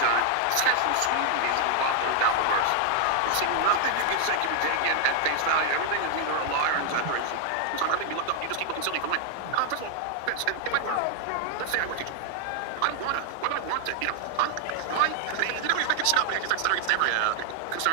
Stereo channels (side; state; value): both; different; correlation 0.00